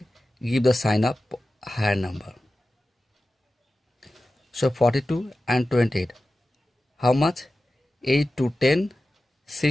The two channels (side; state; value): both; normal; correlation 0.94